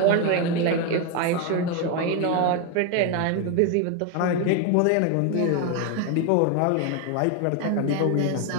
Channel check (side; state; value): both; different; correlation 0.01